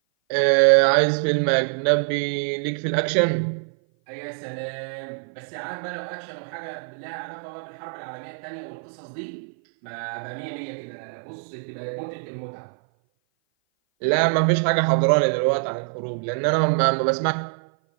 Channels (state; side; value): silent; left; 57 dB below the other